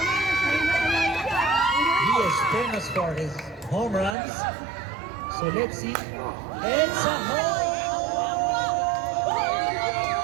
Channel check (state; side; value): drops out; left; at 4.2 s